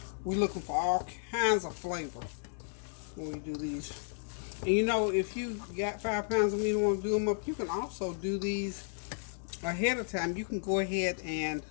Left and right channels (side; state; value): right; silent; digital silence